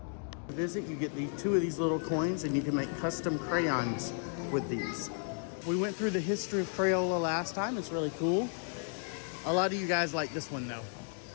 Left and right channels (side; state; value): right; silent; 55 dB below the other